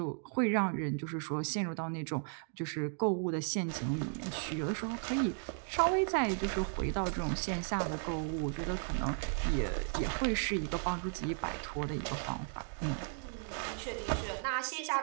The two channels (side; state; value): left; silent; 54 dB below the other